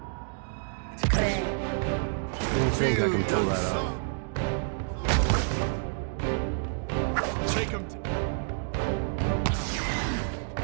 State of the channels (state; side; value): silent; left; digital silence